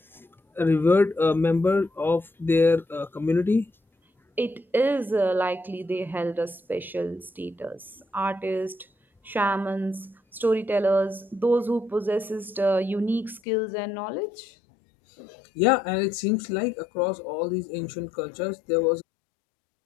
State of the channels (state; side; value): drops out; right; at 13.4 s